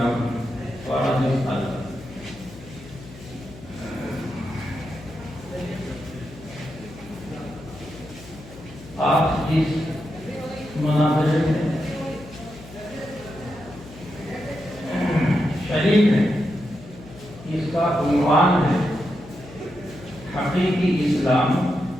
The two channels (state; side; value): noise; left; hum, 17 dB below the sound